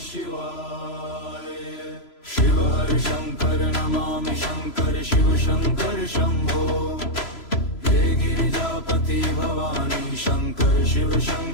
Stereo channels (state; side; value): late; right; 3.0 ms